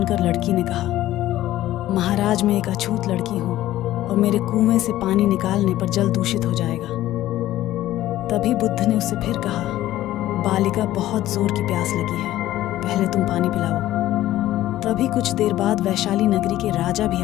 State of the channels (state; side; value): quieter; right; 14.5 dB